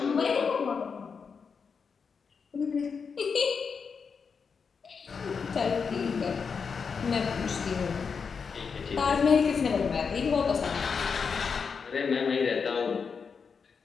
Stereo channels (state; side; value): quieter; right; 5.7 dB